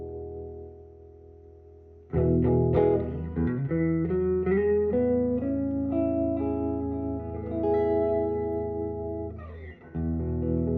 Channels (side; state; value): both; identical; correlation 1.00